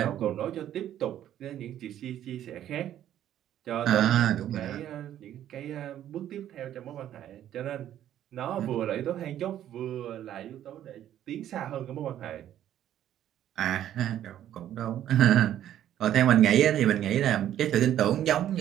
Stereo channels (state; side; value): quieter; left; 11.4 dB